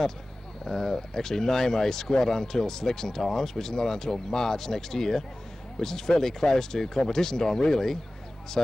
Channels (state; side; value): normal; both; correlation 0.97